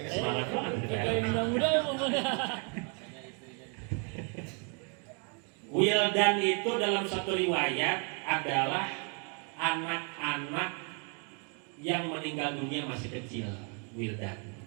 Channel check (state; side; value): quieter; left; 38.2 dB